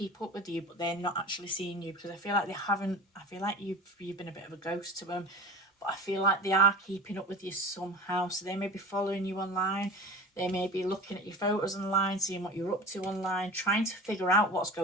up with you, but they're not actually seeing you, because I feel like they haven't. I feel like you've been a bit of a ghost to them, but I feel like they are keeping up with you somehow. So they may be following you online. They may be looking at your photos online, seeing what you're up to online, trying to figure out what's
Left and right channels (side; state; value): both; normal; correlation 0.35